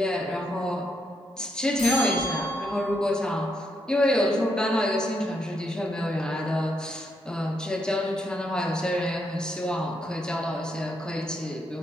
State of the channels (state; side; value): normal; both; correlation 0.78